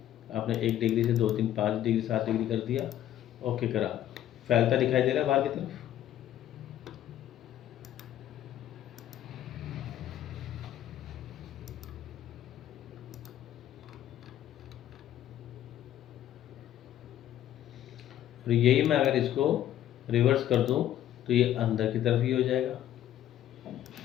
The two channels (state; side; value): quieter; right; 12.0 dB